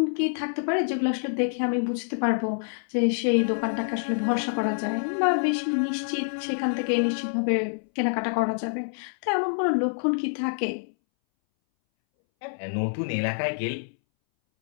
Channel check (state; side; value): silent; right; 61 dB below the other